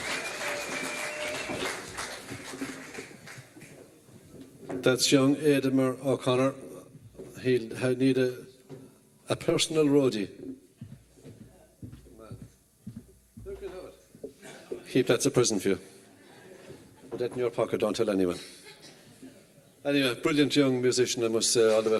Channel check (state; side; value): identical; both; correlation 1.00